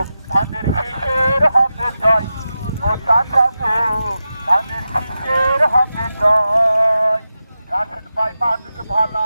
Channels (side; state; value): both; inverted; correlation -0.91